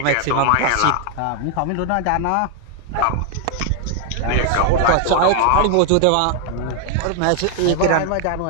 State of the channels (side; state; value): both; different; correlation 0.00